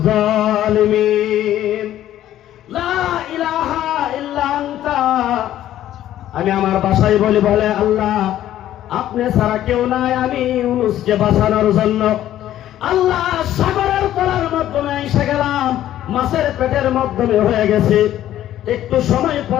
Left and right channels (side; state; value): right; quieter; 12.5 dB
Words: জালিমিন। লা ইলাহা ইল্লা আনতা, আমি আমার ভাষায় বলি, বলে আল্লাহ আপনি ছাড়া কেউ নাই, আমি ইউনূসকে বাঁচানোর জন্য আল্লাহ সাগরের তলার মাধ্যমে এসে গেলাম, মাছের পেটের মাধ্যমে হয়ে গেছে। একটু সময়